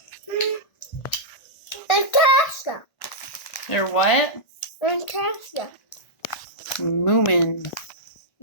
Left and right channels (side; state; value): right; late; 1.4 ms